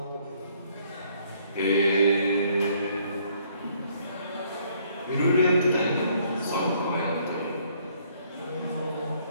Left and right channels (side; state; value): both; inverted; correlation -0.65